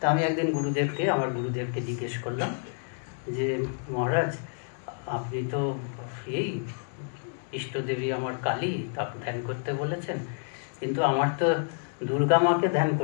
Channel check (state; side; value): silent; right; 59 dB below the other